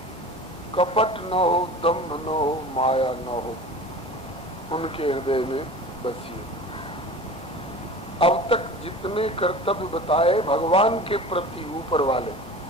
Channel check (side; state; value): both; normal; correlation 0.37